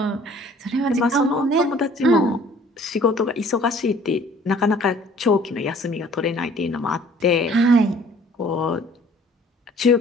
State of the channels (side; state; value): both; normal; correlation 0.54